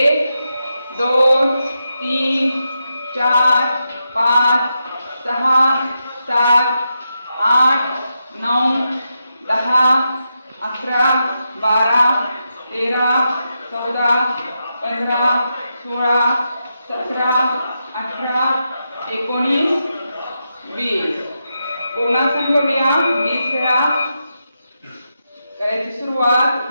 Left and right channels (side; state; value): both; inverted; correlation -0.86